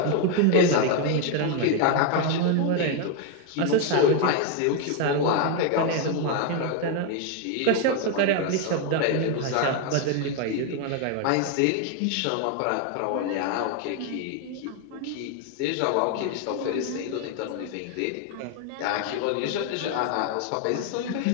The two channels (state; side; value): different; both; correlation 0.01